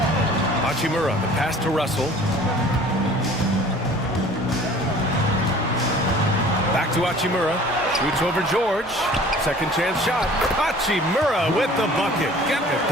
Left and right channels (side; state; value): both; normal; correlation 0.48